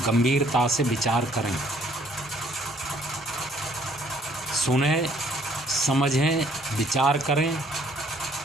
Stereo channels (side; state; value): both; normal; correlation 0.62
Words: गंभीरता से विचार करें, सुनें, समझें, विचार करें